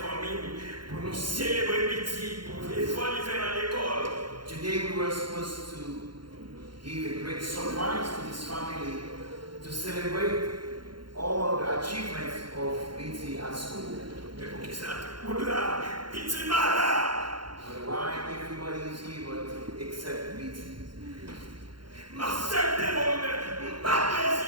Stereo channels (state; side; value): late; left; 0.72 ms